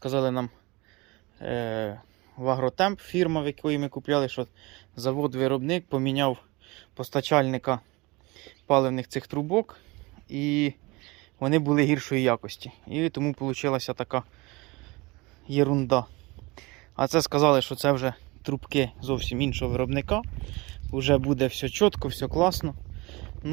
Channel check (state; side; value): quieter; left; 24.2 dB